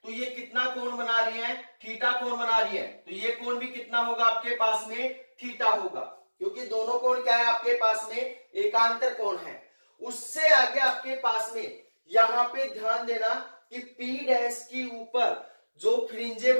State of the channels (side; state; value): both; inverted; correlation -1.00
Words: तो ये कितना कोण बना रही है, थीटा कोण बना रही है। तो ये कोण भी कितना होगा आपके पास में, थीटा होगा, क्योंकि दोनों कोण क्या है आपके पास में, एकांतर कोण है। उससे आगे आपके पास में यहां पे ध्यान देना कि P डैश के ऊपर जो फ्रिंजे